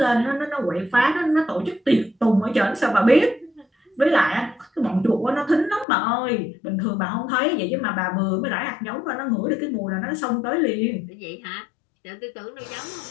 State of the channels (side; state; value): right; drops out; at 5.9 s